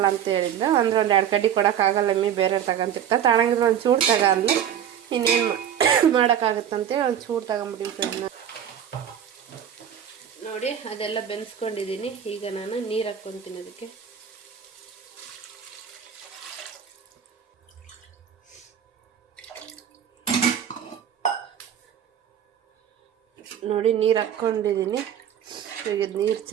ಅಂತ ಹೇಳಿದ್ದು. ಅಂದರೆ ಒಂದು 2 ಕಡ್ಡಿ ಕೊಡೋಕ್ಕಾಗಲ್ಲ, ಬೇರೆ ತಗೊಂತಿರ್ತಾರೆ. ತಗೊಂಡಿದ್ರೆ ಒಂದು ಚೂಡು ತಗೊಂಡ್ಲು, ಇನ್ನೇನು ಮಾಡೋಕ್ಕಾಗುತ್ತಂತೆ ಒಂದು ಚೂಡು ತಗೊಂಬಿಟ್ಟಿದ್ದೆ. ನೋಡಿ ಅದೆಲ್ಲ ಬೆನ್ಸ್ಕೊಂಡಿದ್ದೀನಿ. ಈಗ ನಾನು ನೀರು ಹಾಕ್ಕೊತೀನಿ ಅದಕ್ಕೆ. ನೋಡಿ ನೀರು ಹಾಕ್ಕೊಂಡಿದ್ದೀನಿ. ಈಗ ನೀರು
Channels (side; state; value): left; quieter; 9.3 dB